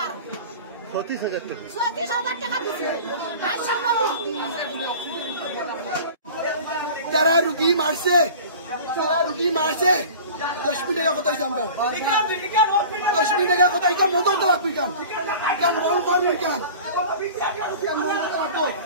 35,000 টাকা। যারা রুগী মারছে 10 মিনিট টাকা কথা আমরা 10 মিনিট টাকা কথা এটা মতো লাগবে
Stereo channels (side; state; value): both; inverted; correlation -0.39